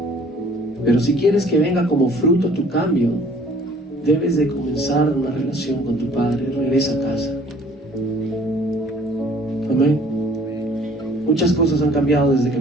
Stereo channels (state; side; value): normal; both; correlation 0.55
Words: Pero si quieres que venga como fruto tu cambio, debes de comenzar una relación con tu Padre. Regresa a casa. Amén. Muchas cosas han cambiado desde que